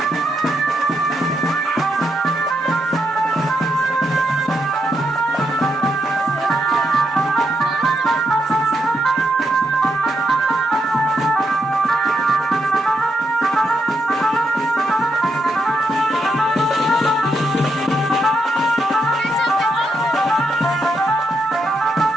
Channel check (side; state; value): both; normal; correlation 0.81